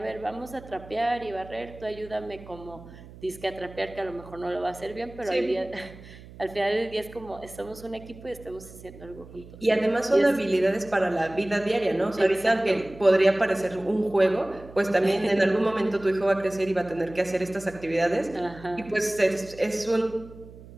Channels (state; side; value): noise; right; hum, 18 dB below the sound